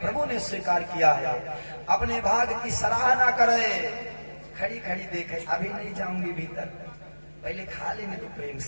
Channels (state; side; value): inverted; both; correlation -1.00